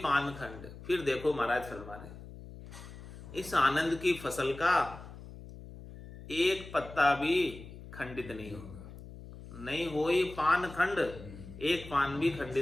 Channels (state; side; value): noise; left; hum, 15 dB below the sound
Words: खंड, फिर देखो महाराज फरमा रहे, इस आनंद की फसल का एक पत्ता भी खंडित नहीं होगा। नहीं होई पान खंड, एक पान भी